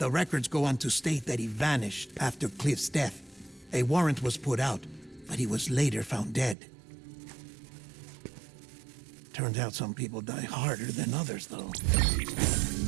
records go on to state that he vanished after Cliff's death. A warrant was put out, but he was later found dead. Turns out some people die harder than others, though.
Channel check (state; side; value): drops out; left; at 6.6 s